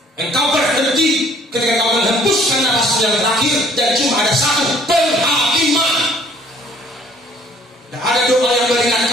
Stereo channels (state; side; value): normal; both; correlation 0.58